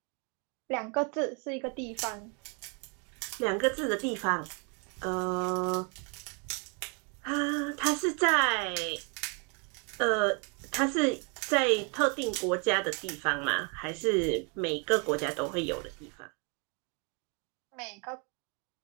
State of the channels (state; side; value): quieter; left; 35.5 dB